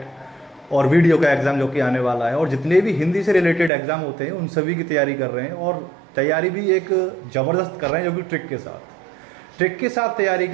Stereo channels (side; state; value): left; drops out; at 3.7 s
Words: और वीडियो का एग्ज़ाम जो कि आने वाला है, और जितने भी हिंदी से रिलेटेड एग्ज़ाम होते हैं उन सभी की तैयारी कर रहे हैं। और तैयारी भी एक ज़बरदस्त कर रहे हैं, जो कि ट्रिक के साथ तैयारी